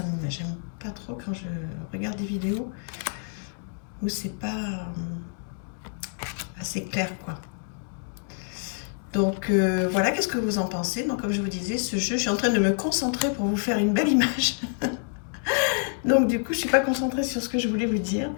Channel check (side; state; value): right; silent; 56 dB below the other